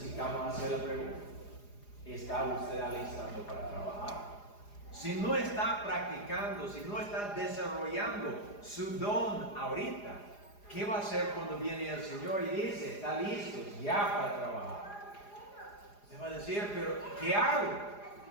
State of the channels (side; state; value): right; late; 4.9 ms